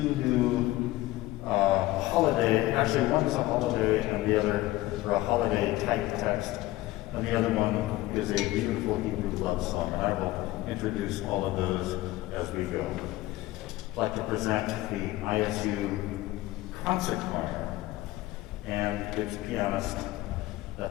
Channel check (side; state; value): right; quieter; 17.6 dB